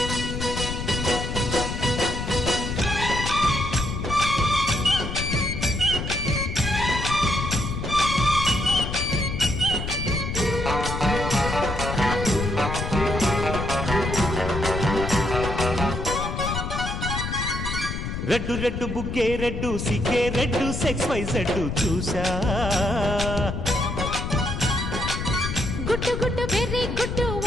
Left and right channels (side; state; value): left; noise; rumble, 4 dB below the sound